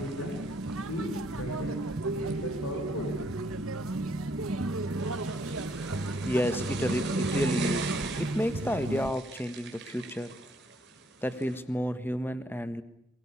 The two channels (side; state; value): both; normal; correlation 0.68